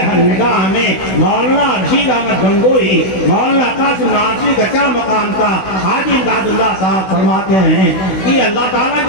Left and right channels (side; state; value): right; late; 16 ms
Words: نگاہ میں مولانا رشید احمد گنگوہی، مولانا قاسم ناصری کا کیا مقام تھا۔ حاجی امداد اللہ صاحب فرماتے ہیں کہ اللہ تعالیٰ